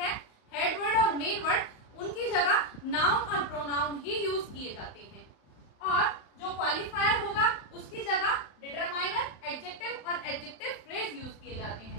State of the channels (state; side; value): late; right; 35 ms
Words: हेड वर्ड और मेन वर्ड, उनकी जगह नाउन और प्रोनाउन ही यूज किए जाते हैं। और जो क्वालिफायर होगा उसकी जगह डिटरमाइनर, एडजेक्टिव और एडजेक्टिव फ्रेज यूज किए जाते